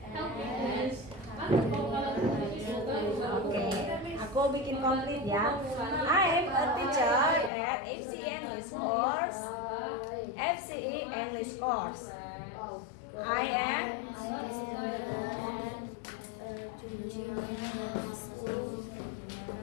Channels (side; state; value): right; drops out; at 7.5 s